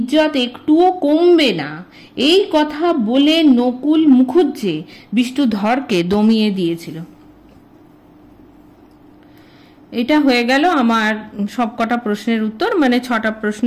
একটুও কমবে না। এই কথা বলে নকুল মুখুজ্জে বিষ্ণুধরকে দমিয়ে দিয়েছিল। এটা হয়ে গেল আমার সবকটা প্রশ্নের উত্তর, মানে 6টা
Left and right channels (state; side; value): identical; both; correlation 1.00